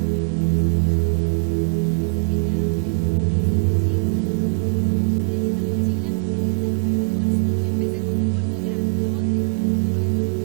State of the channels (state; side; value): quieter; left; 38.8 dB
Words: como esa mochila, hasta que ya me hice más chic y dejé la mochila y empecé a coger un bolso. Y empecé con un bolso grandote. Yo creo que cuando mi